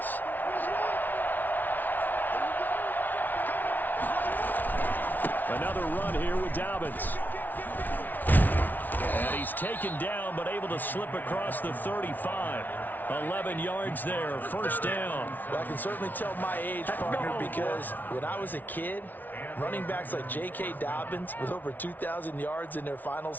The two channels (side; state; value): right; late; 0.084 ms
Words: Another run here with Dobbins. And he he's taken down but able to slip across the 35. 11 yards there, first down. Well, I can certainly tell my age, partner, because when I was a kid, running backs like J.K. Dobbins with over 2,000 yards in their final